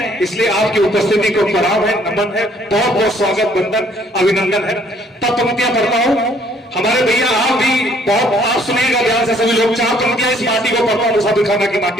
इसलिए आपकी उपस्थिति को प्रणाम है, नमन है, बहुत बहुत स्वागत, वंदन, अभिनंदन है। तब पंक्तियां पढ़ता हूं। हमारे भैया आप भी बहुत आप सुनिएगा ध्यान से सभी लोग। 4 पंक्तियां इस माटी को पढ़ता हूं, मुसाफिर खाना की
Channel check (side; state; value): both; normal; correlation 0.62